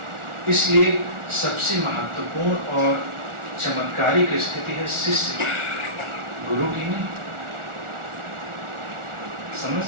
इसलिए सबसे महत्वपूर्ण और चमत्कारिक स्थिति है शिष्य, गुरु की नहीं। समझ?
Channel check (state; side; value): late; left; 1.4 ms